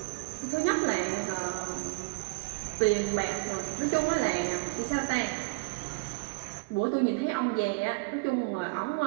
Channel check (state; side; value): quieter; left; 29.9 dB